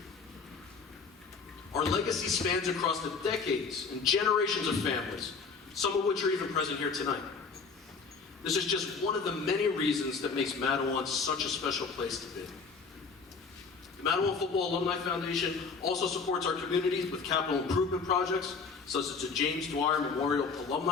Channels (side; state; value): right; quieter; 5.0 dB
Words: Our legacy spans across the decades and generations of families, some of which are even present here tonight. This is just one of the many reasons that makes Madawan such a special place to be. The Madawan Football Alumni Foundation also supports our community with capital improvement projects, such as the James Dwyer Memorial